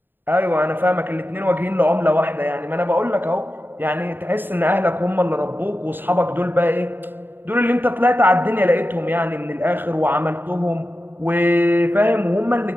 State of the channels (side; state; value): left; late; 0.095 ms